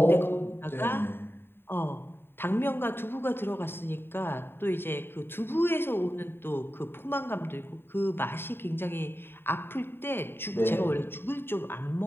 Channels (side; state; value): right; late; 0.11 ms